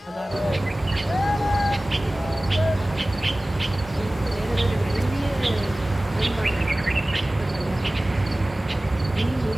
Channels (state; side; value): normal; both; correlation 0.97